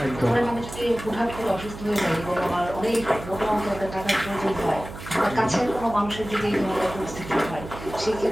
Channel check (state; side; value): noise; right; hum, 12 dB below the sound